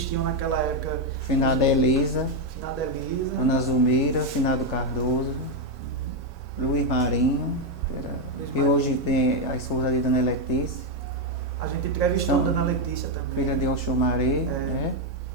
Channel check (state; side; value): normal; both; correlation 0.04